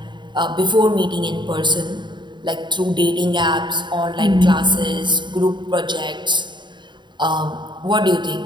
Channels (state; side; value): late; left; 0.22 ms